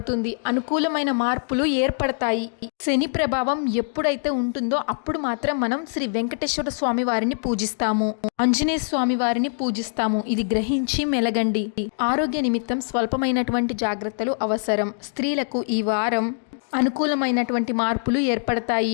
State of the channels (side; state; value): right; silent; digital silence